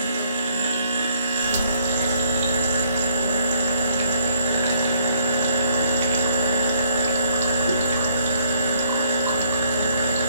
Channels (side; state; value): both; inverted; correlation -0.65